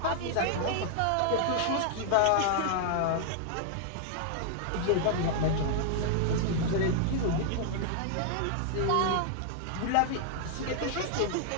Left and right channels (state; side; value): different; both; correlation 0.00